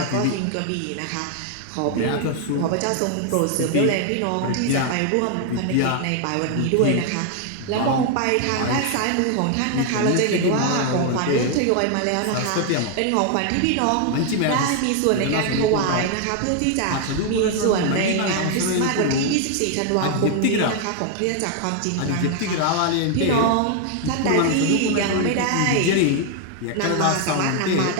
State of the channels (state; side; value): different; both; correlation 0.00